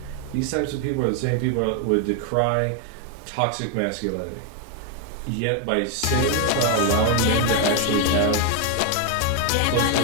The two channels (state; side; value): different; both; correlation 0.00